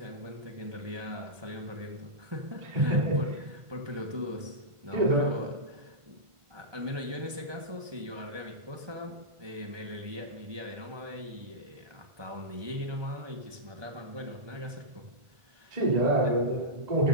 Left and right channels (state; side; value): late; left; 1.2 ms